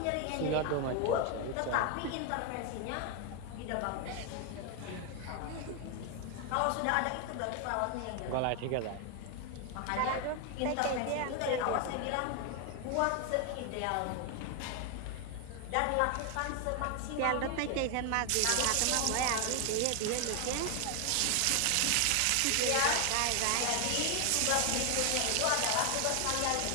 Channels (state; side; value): different; both; correlation 0.00